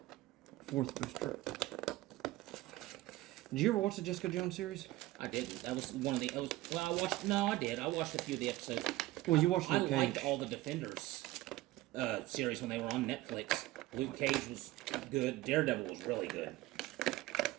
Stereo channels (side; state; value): left; quieter; 17.8 dB